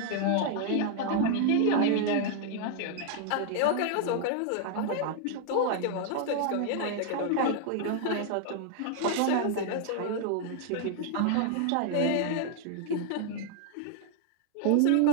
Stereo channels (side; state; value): both; different; correlation 0.00